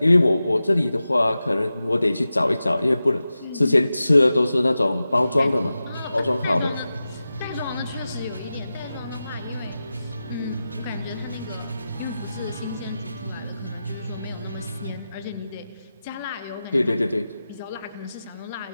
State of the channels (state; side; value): inverted; both; correlation -0.93